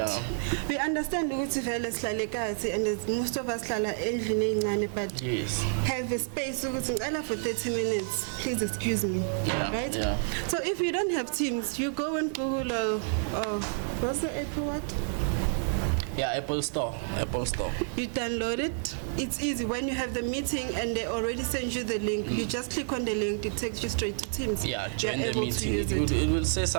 We understand and most of us but have a space for 30 minutes. Please excuse me. Right? So if you don't have Teams, you go and Google what's the Apple what? Apple Store. You download it. It's easy. When you have the meeting and they already send you the link, you just click on the link. It takes you straight to Teams. Join the meeting. It will say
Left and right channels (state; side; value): silent; left; 58 dB below the other